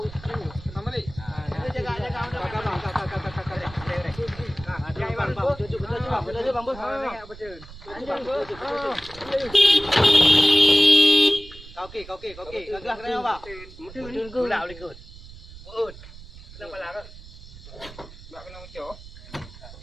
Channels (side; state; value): right; noise; rumble, 17 dB below the sound